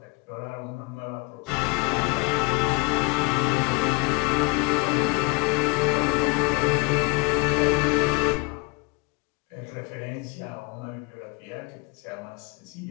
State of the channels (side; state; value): right; quieter; 26.5 dB